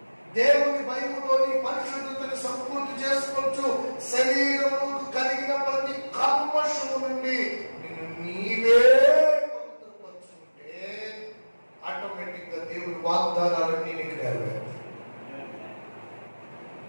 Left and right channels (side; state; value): both; inverted; correlation -1.00